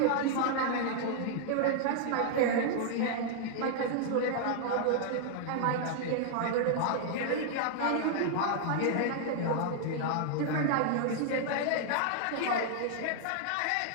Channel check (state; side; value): different; both; correlation -0.01